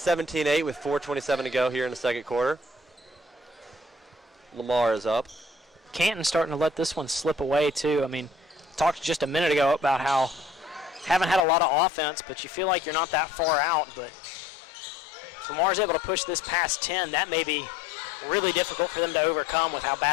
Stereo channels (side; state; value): right; drops out; at 11.5 s